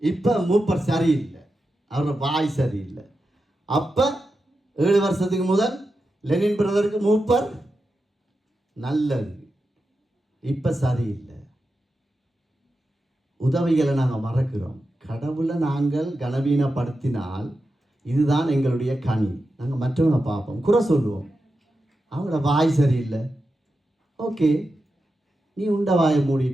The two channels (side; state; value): both; normal; correlation 0.90